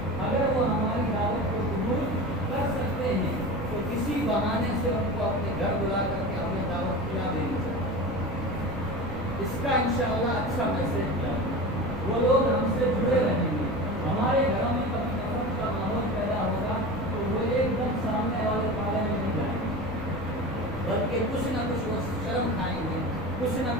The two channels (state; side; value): normal; both; correlation 0.30